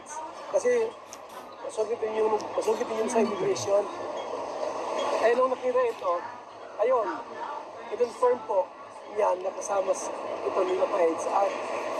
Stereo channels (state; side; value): identical; both; correlation 1.00